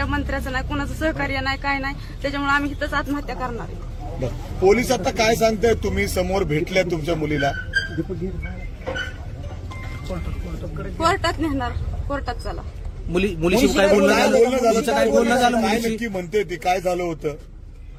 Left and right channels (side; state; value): both; identical; correlation 1.00